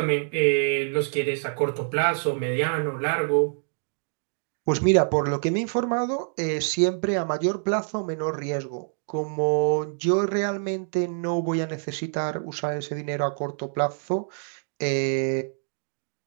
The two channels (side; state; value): left; silent; 61 dB below the other